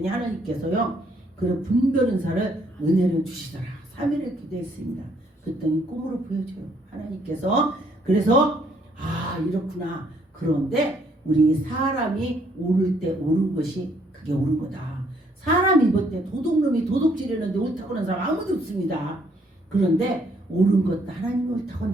하나님께서요 그런 분별 은사를 은혜를 주시더라. 3일을 기도했습니다. 그랬더니 꿈으로 보여줘요. 하나님께서. 그래서 이렇구나. 그런데 우리 사람이 오를 때 옳은 것이 그게 옳은 거다. 사람이 볼 때 도둑놈이 도둑질하는데 옳다고 하는 사람 아무도 없습니다. 그런데 옳은 것도 하나님이 옳다고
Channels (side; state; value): both; normal; correlation 0.68